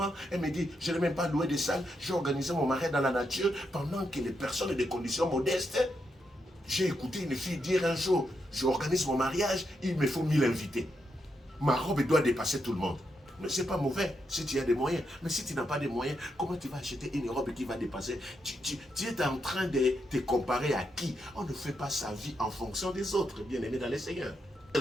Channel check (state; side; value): normal; both; correlation 0.82